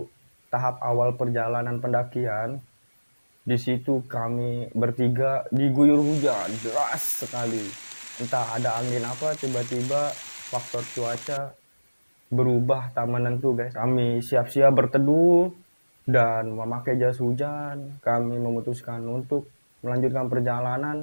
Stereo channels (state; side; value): inverted; both; correlation -1.00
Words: tahap awal perjalanan pendakian, di situ kami bertiga diguyur hujan deras sekali. Entah ada angin apa, tiba-tiba faktor cuaca berubah tak menentu guys. Kami siap-siap berteduh dan memakai jas hujan. Kami memutuskan untuk melanjutkan